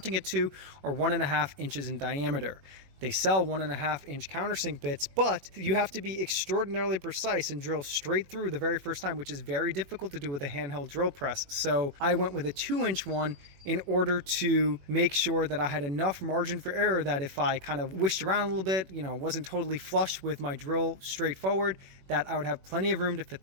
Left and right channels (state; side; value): late; left; 21 ms